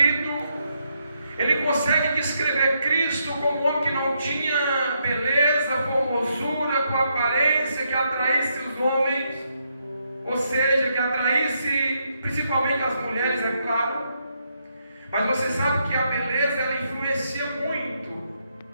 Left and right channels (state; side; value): inverted; both; correlation -0.78